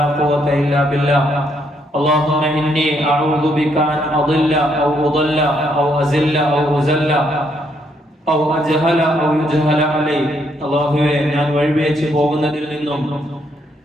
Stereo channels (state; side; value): normal; both; correlation 0.73